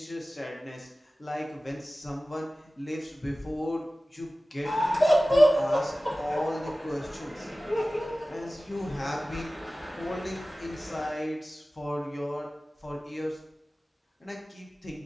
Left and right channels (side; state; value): both; normal; correlation 0.97